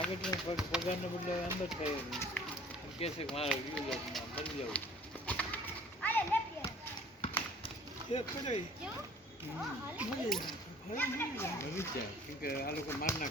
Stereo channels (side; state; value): both; normal; correlation 0.51